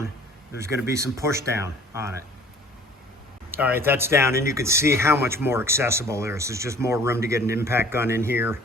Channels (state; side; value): normal; both; correlation 0.50